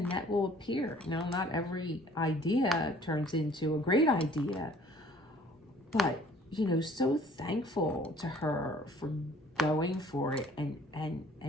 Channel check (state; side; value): normal; both; correlation 0.54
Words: will appear. Not every idea turns into a great idea, but so thankful to her for going for it